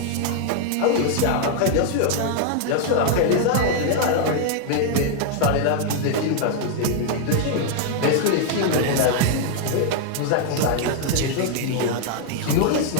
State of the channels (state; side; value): different; both; correlation 0.00